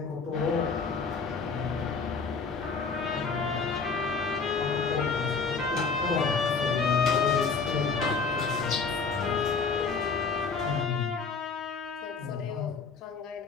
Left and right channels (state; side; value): quieter; right; 4.9 dB